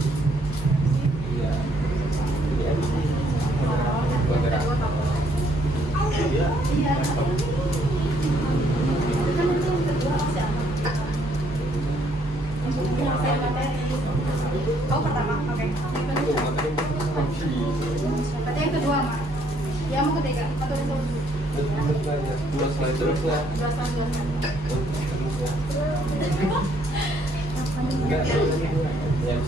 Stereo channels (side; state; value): both; normal; correlation 0.67